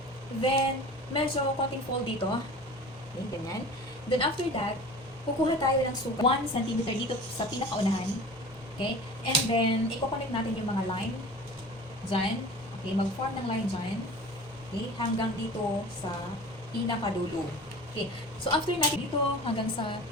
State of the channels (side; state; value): both; normal; correlation 0.39